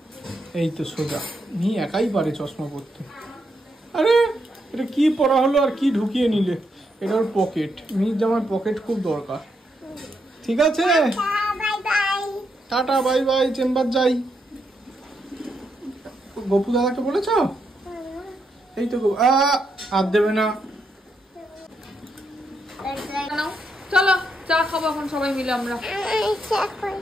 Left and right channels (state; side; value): normal; both; correlation 0.80